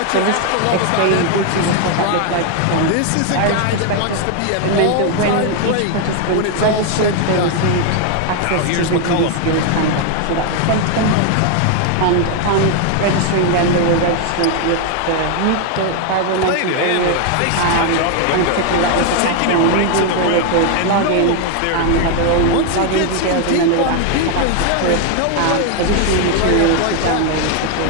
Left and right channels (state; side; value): different; both; correlation 0.01